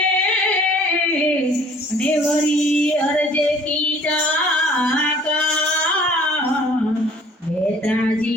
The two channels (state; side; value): normal; both; correlation 0.54